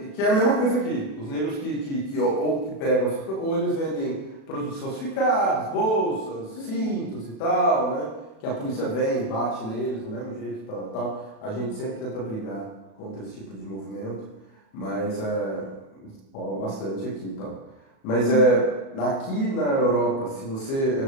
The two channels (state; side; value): late; right; 37 ms